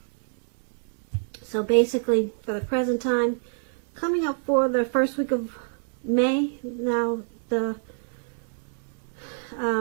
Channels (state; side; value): silent; left; digital silence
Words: So basically, for the present time, coming up for the first week of May, now